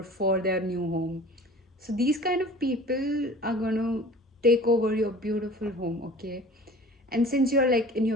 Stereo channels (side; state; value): both; normal; correlation 0.43